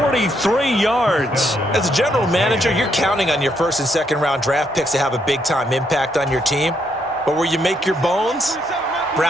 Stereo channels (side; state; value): both; normal; correlation 0.75